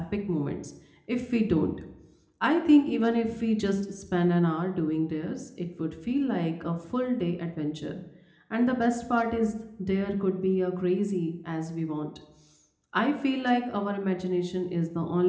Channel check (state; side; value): identical; both; correlation 1.00